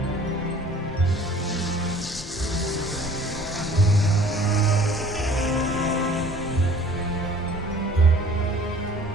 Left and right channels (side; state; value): both; normal; correlation 0.50